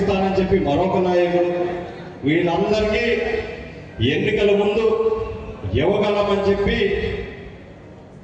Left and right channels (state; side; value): identical; both; correlation 1.00